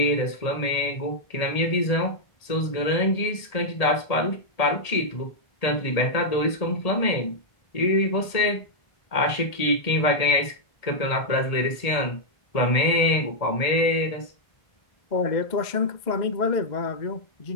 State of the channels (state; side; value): late; right; 1.8 ms